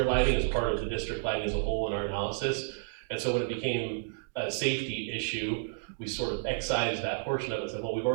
lighting as part of the district lighting as a whole in our analysis. And so when it became a safety issue, we sort of excised that portion of it and said, well, we've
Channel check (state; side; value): silent; left; digital silence